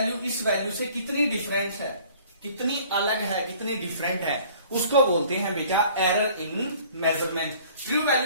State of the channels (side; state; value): both; inverted; correlation -0.52